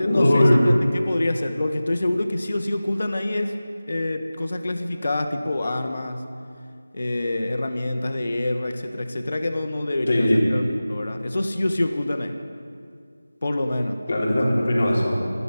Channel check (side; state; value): both; inverted; correlation -0.96